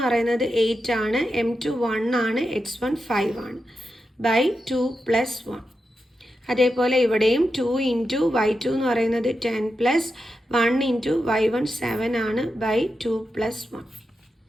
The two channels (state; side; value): normal; both; correlation 0.88